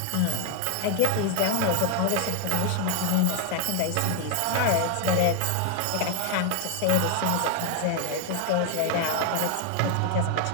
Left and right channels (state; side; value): different; both; correlation 0.00